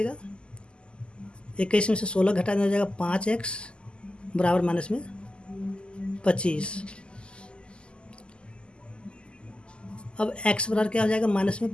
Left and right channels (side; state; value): right; late; 0.050 ms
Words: 21 में से 16 घटा देना हो जाएगा 5x बराबर माइनस में 25। अब x बराबर क्या हो जाएगा माइनस